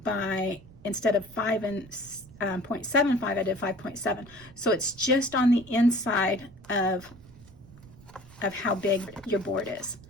by, instead of 5.75, I did 5.7. So it's just on the inside of how big your board is.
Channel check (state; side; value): noise; right; rumble, 22 dB below the sound